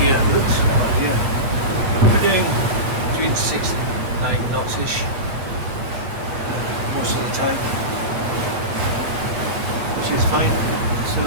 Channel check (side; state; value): left; late; 8.3 ms